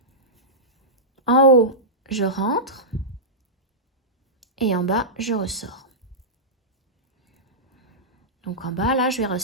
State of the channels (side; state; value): both; normal; correlation -0.14